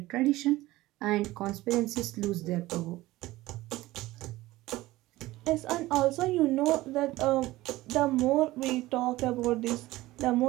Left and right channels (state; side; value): quieter; left; 17.8 dB